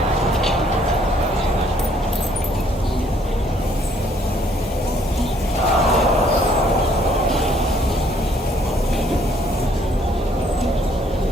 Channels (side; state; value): both; normal; correlation 0.64